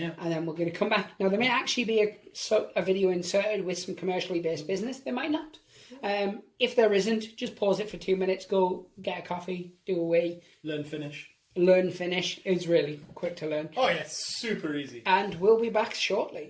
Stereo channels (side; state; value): both; identical; correlation 1.00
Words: And then we're going to come back. Now, there may actually be a video inserted with some commercially based business. There might not. If there isn't, just pause it for 2 minutes, go get a coffee, do a wee. Learn Finnish. Learn Finnish. It's really quick to learn. Oh, yeah, super easy. And we'll be back